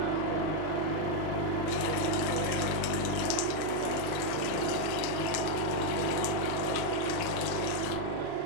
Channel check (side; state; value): both; different; correlation 0.01